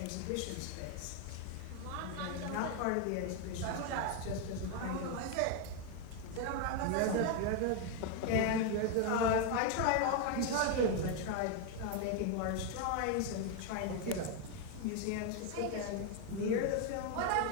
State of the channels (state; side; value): different; both; correlation 0.01